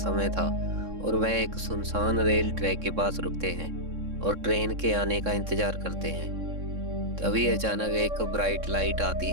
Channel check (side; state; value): left; late; 3.6 ms